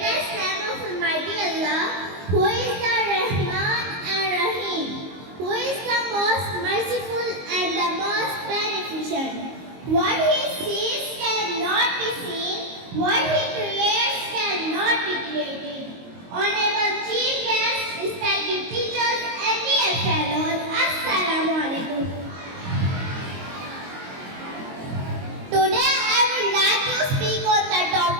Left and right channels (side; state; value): left; late; 22 ms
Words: name of Almighty Allah, who is the Rahman and Rahim, who is the most merciful and the most beneficent. What He sees cannot be seen, what He creates cannot be created. Honorable Chief Guests, respected teachers and dear fellows, Assalamu alaikum. Today I would like to speak on the